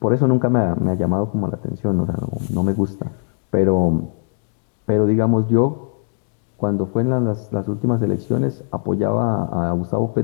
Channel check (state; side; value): silent; right; digital silence